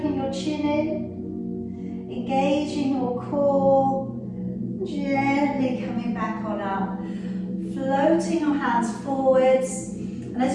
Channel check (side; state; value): both; identical; correlation 1.00